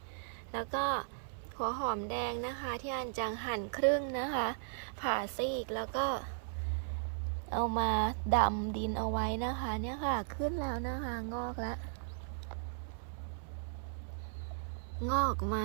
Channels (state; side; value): silent; left; 53 dB below the other